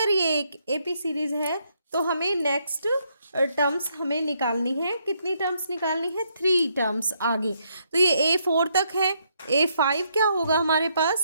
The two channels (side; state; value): both; inverted; correlation -0.74